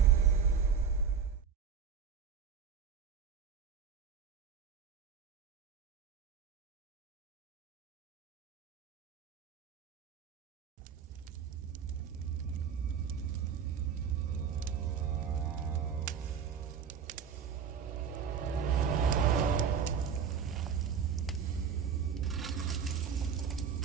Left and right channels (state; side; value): quieter; left; 7.0 dB